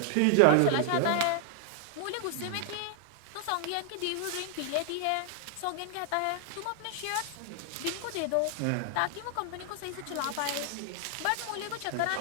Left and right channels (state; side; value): different; both; correlation 0.00